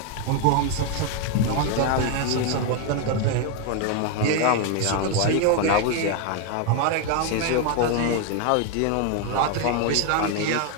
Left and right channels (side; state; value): both; different; correlation 0.01